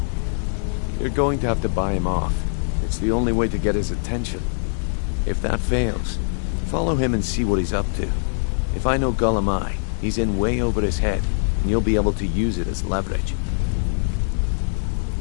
You're going to have to buy him off. It's the only way to get his attention. If that fails, follow him and see what he's up to. If I know Gullum, he's in way over his head, and you'll be able to use it as leverage.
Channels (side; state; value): right; silent; digital silence